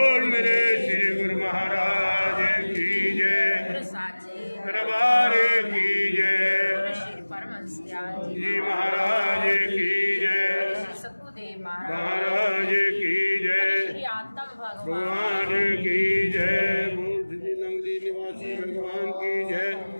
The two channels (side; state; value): both; inverted; correlation -1.00